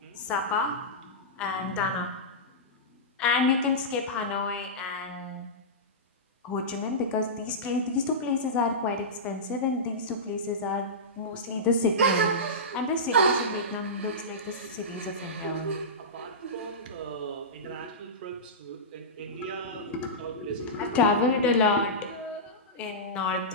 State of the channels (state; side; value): normal; both; correlation -0.16